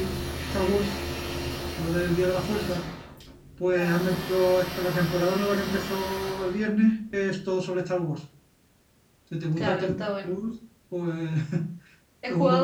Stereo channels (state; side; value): identical; both; correlation 1.00